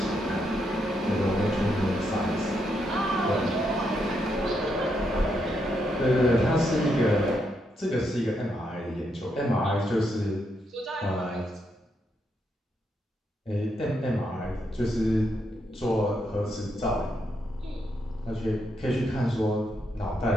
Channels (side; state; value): both; normal; correlation 0.79